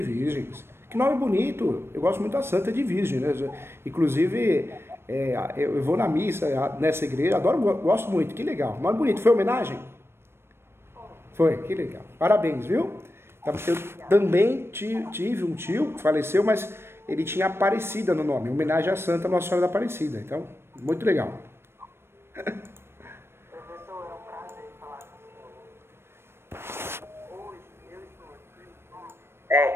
Virgens. Que nome bonito. Eu gosto muito da Santa de Virgem, né? Inclusive, eu vou na missa nessa igreja, adoro, gosto muito. Que legal. Nome bonito. Foi homenagem? Foi, que legal. Parabéns, viu? Eu também tive um tio que faleceu, mas ele tinha Aparecida no nome, em homenagem à Santa Nossa Senhora da Aparecida. Então, muito legal. Professor, é um prazer falar com o senhor. Hoje eu estou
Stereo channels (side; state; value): left; late; 0.12 ms